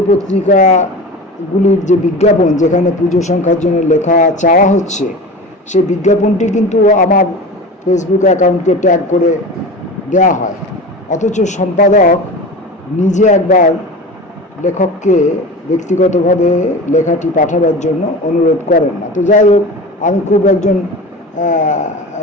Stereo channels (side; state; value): both; normal; correlation 0.32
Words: যে বিজ্ঞাপন, যেখানে পুজো সংখ্যার জন্য লেখা চাওয়া হচ্ছে, সেই বিজ্ঞাপনটি কিন্তু আমার ফেসবুক অ্যাকাউন্টকে ট্যাগ করে দেওয়া হয়। অথচ সম্পাদক নিজে একবার লেখককে ব্যক্তিগতভাবে লেখাটি পাঠাবার জন্য অনুরোধ করেন না। তো যাই হোক, আমি খুব একজন